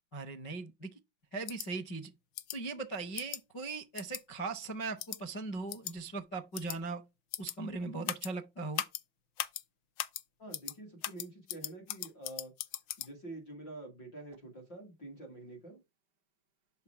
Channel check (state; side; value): late; right; 5.7 ms